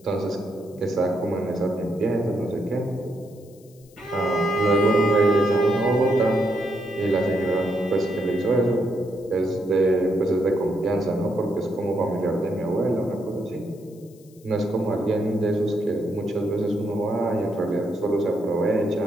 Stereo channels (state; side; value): noise; left; hiss, 28 dB below the sound